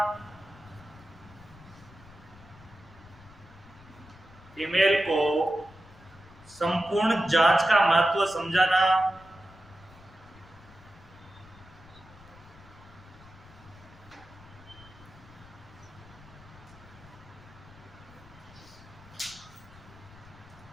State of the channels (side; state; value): left; noise; rumble, 22 dB below the sound